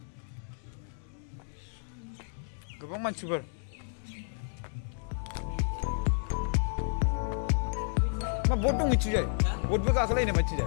गोबां मानसिफोर मा बोट दं मिथिजाय बोटबो गाखोलायनो मिथिजाय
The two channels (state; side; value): silent; right; digital silence